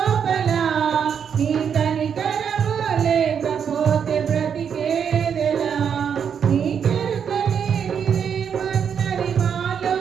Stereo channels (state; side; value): quieter; left; 7.5 dB